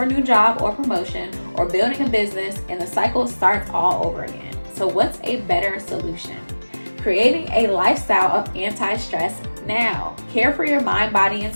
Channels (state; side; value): inverted; both; correlation -1.00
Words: a new job or promotion, or building a business, and the cycle starts all over again. So what's a better solution? Creating a lifestyle of anti-stress now. Care for your mind, body, and